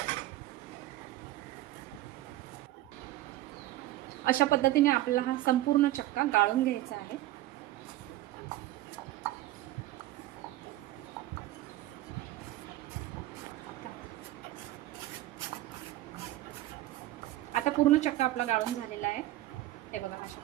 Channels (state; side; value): quieter; left; 15.6 dB